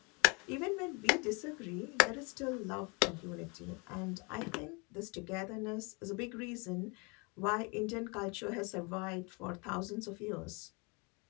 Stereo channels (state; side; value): quieter; right; 30.9 dB